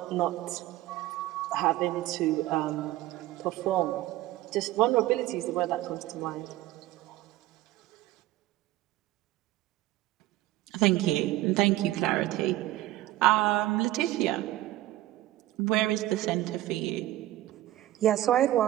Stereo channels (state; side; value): quieter; left; 15.7 dB